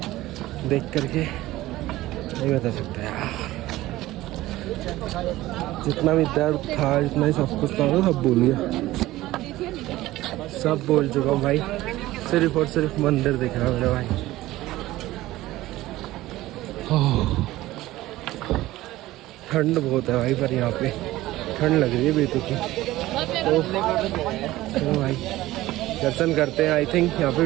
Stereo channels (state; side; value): quieter; left; 16.8 dB